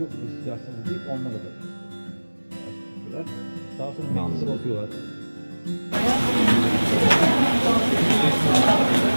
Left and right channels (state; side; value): inverted; both; correlation -1.00